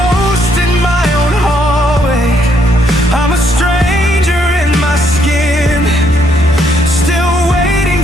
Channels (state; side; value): normal; both; correlation 0.72